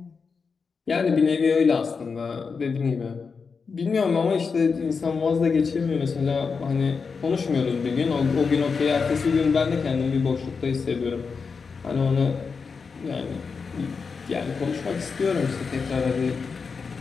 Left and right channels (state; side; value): quieter; right; 5.2 dB